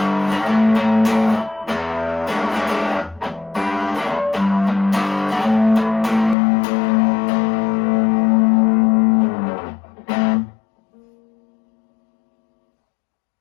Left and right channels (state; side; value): drops out; right; at 6.4 s